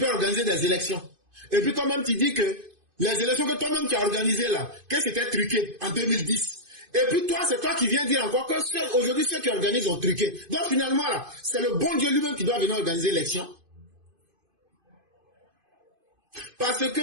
organiser des élections? Et puis toi-même tu dis que les élections que toi-même tu as organisées là, qu'est-ce qui était truqué en 2010? Et puis toi, c'est toi qui viens dire encore que aujourd'hui ceux qui organisent ont truqué. Donc finalement là, c'est le bon Dieu lui-même qui doit venir organiser l'élection. Parce que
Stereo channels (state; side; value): late; left; 2.5 ms